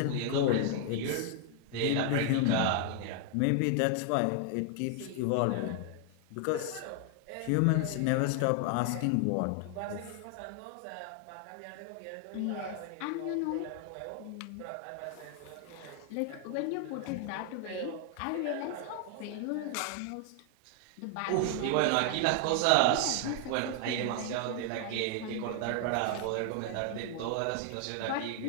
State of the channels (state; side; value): different; both; correlation 0.00